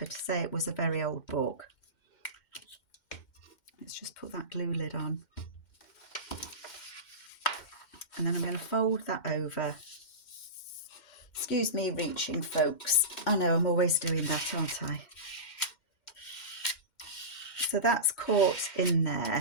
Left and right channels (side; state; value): right; late; 2.1 ms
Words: to say it was a very old book. Let's just put that glue lid on. And then I'm going to fold that over. Excuse me reaching, folks. I know I'm always doing that, aren't I? So that's caught in